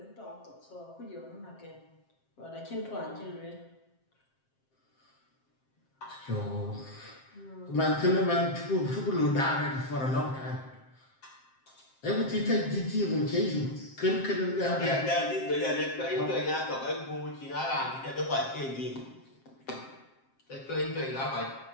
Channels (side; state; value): right; late; 7.6 ms